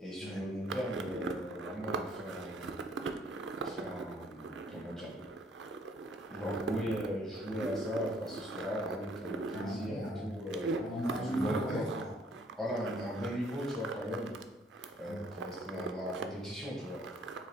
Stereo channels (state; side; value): normal; both; correlation 0.62